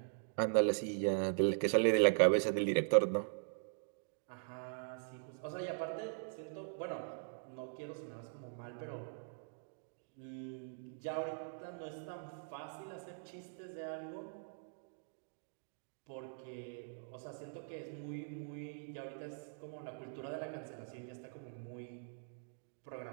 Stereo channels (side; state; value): left; silent; digital silence